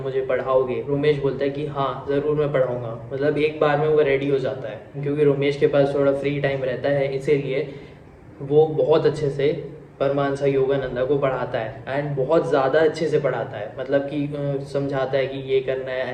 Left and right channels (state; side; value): identical; both; correlation 1.00